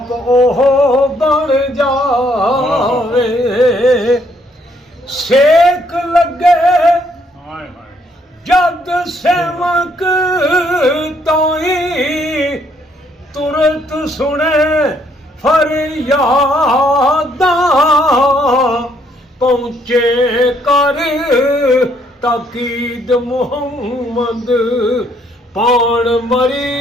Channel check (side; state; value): both; normal; correlation 0.69